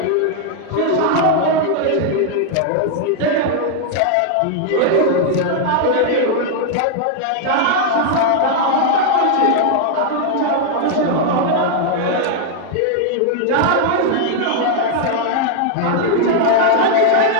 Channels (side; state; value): both; different; correlation 0.00